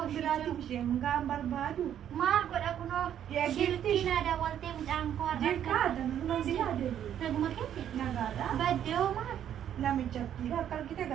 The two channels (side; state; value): left; quieter; 10.1 dB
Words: biraatiif isheen gaan barbaadu. maal godha kunoo Yaa shilkii gifti. naa daawwaltee mucaan koo Jirkaa danuma si yaadatu. naguma keessa Nagaadha. baddee hoo maal Namichatti akka argite